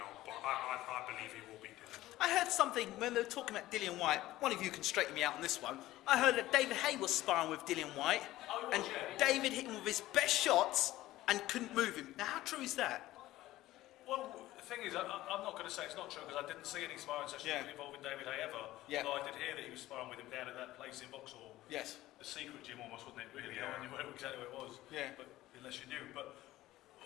but I believe he will be Dillian. I heard something when they were talking about Dillian Whyte. One of you can straighten me out on this one. I heard that David Haye was sparring with Dillian Whyte, and David hit him with his best shots and couldn't move him. Now, how true is that? Well, the thing is, I'm not going to say it's not true because I didn't see any sparring sessions involving David Haye ever. Yeah. Although I did hear that he was sparring with him down at that place in Vauxhall. Yes. The secret gym almost, wasn't it? Really, no one knew exactly where it was. Yeah. But unless you knew, but.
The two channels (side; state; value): right; quieter; 16.0 dB